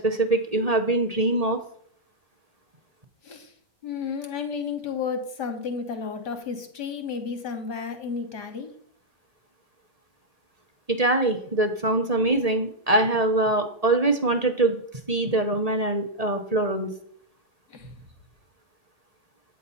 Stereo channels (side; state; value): left; late; 1.8 ms